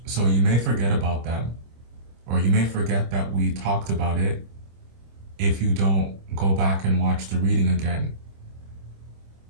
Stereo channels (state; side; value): late; left; 26 ms